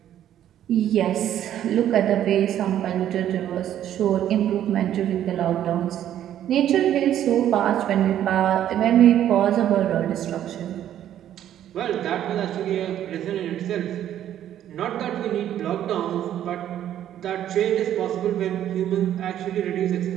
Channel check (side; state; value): left; quieter; 11.2 dB